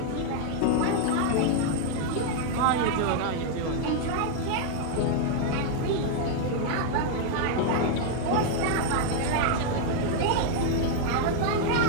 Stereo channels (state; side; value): different; both; correlation 0.00